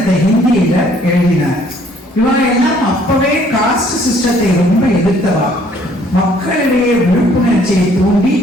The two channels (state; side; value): normal; both; correlation 0.61